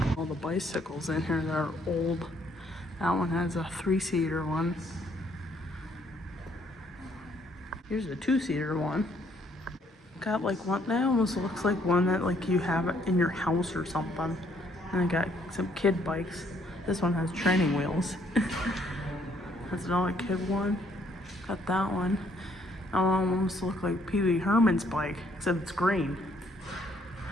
All the bicycles in here that are old. That one has a 3-seater one. Here's a 2-seater one. Got like one that almost looks like one that like you have it in your house or something. And I got some kid bikes. This one has training wheels. That's another kid one. Got that one. That one almost looks like Pee Wee Herman's bike, except it's green.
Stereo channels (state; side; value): normal; both; correlation 0.67